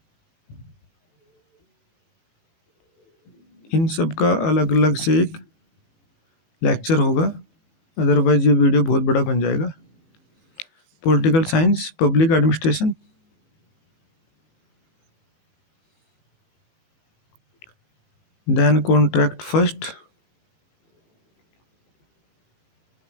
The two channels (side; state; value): right; late; 19 ms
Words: इन सब का अलग अलग से एक लेक्चर होगा, अदरवाइज ये वीडियो बहुत बड़ा बन जाएगा. Political science, public administration. Then contract first.